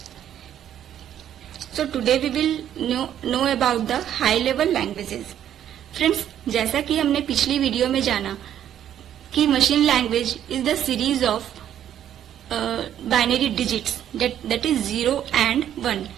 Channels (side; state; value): left; quieter; 10.5 dB